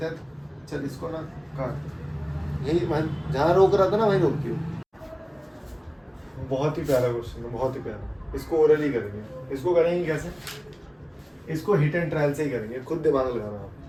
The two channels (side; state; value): both; identical; correlation 1.00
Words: हैं, चल इसको ना काट, यही मैं जहाँ रोक रहा था ना वहीं रोक दियो। बहुत ही प्यारा क्वेश्चन है, बहुत ही प्यारा। इसको ओरली करेंगे, इसको करेंगे कैसे, इसको हिट एंड ट्रायल से ही करेंगे, खुद दिमाग लगाना आप।